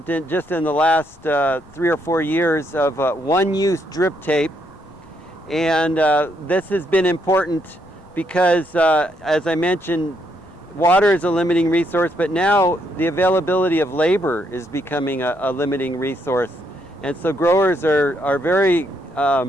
just in the last 3 or 4 years of one-use drip tape. And this has been important because, as I mentioned, water is a limiting resource, but now the availability of labor is becoming a limiting resource. And so growers are very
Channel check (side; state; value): left; noise; rumble, 26 dB below the sound